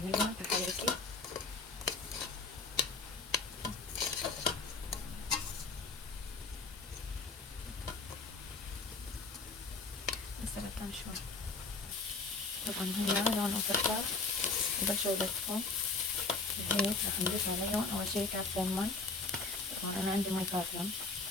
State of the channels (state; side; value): quieter; right; 4.0 dB